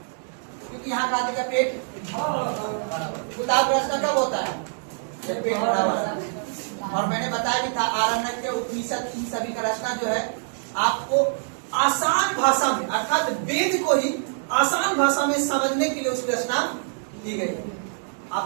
यहाँ का आदमी का पेट, किताब रचना कब होता है जब पेट भरा हुआ है। और मैंने बताया भी था आरण्यक, उपनिषद, इन सभी का रचना जो है आपको आसान भाषा में, अर्थात वेद को ही आसान भाषा में समझने के लिए उसकी रचना की गई है। आप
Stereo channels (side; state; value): left; silent; digital silence